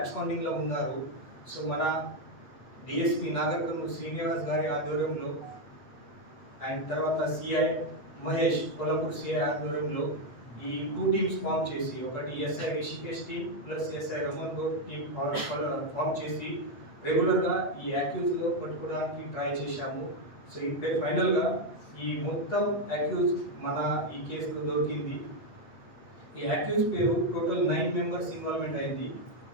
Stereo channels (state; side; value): late; right; 8.3 ms